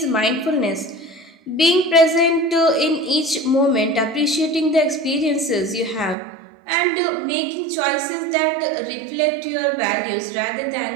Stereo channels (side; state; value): left; drops out; at 6.2 s